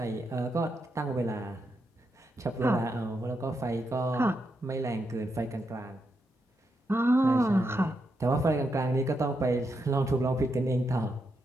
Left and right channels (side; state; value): both; normal; correlation 0.83